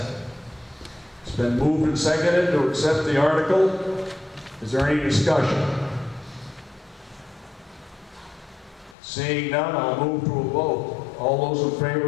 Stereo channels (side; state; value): right; drops out; at 9.0 s